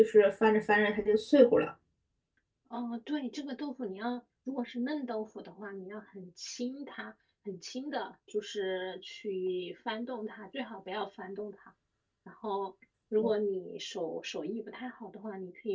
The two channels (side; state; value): both; identical; correlation 1.00